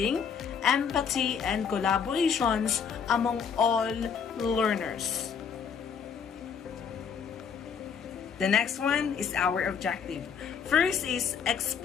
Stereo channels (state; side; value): quieter; right; 6.8 dB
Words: empathy, and collaborations among all learners. The next one is our objective. First is